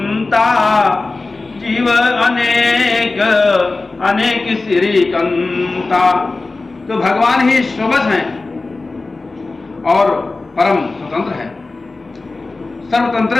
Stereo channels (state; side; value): quieter; right; 3.5 dB